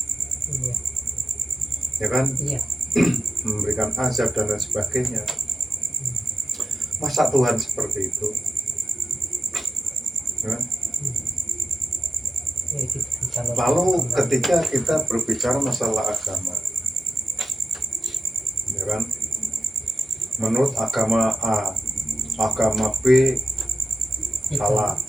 Iya. ya kan? Iya. Memberikan azab dan lain sebagainya. Masa Tuhan seperti itu? Ya kan? Ya, gitu. Lalu ketika kita berbicara masalah agama, ya kan, menurut agama A, agama B salah,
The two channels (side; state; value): both; normal; correlation 0.89